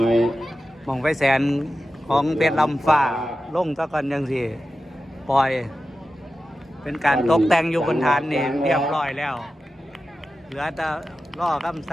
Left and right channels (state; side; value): normal; both; correlation 0.93